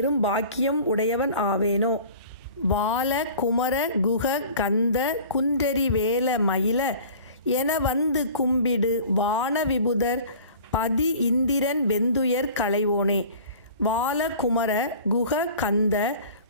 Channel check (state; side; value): inverted; both; correlation -0.44